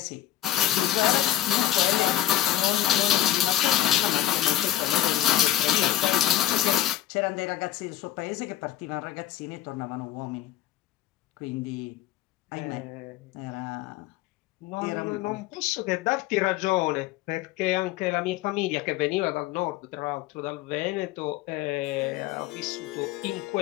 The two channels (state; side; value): quieter; right; 13.2 dB